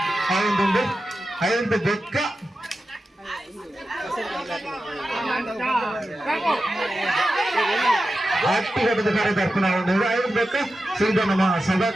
ಅವೊಂದುಂಡು ಐದು ಬೆಕ್ಕ ಹಟ್ಟಿಘಟ್ಟದ ಕರದರ್ಪಣ ಅವೊಂದು ಐದು ಬೆಕ್ಕ ಸೀದಾ ನಮ್ಮ ಸಭಾ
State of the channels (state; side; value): normal; both; correlation 0.92